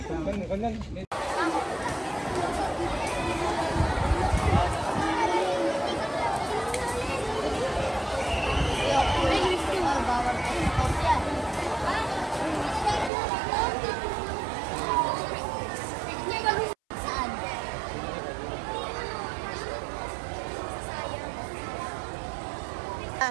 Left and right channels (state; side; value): drops out; left; at 13.1 s